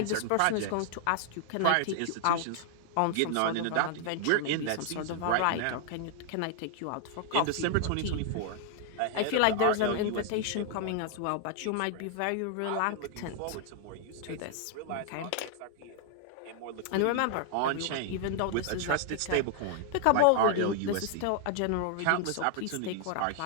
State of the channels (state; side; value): different; both; correlation 0.00